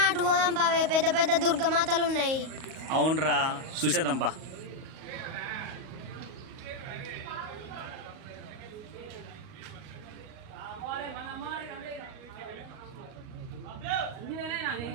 అటు పోదాంపా, పెద్ద పెద్ద దుర్గమాతలు ఉన్నాయి. అవునరా, చూసేద్దాంపా.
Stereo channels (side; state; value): left; late; 38 ms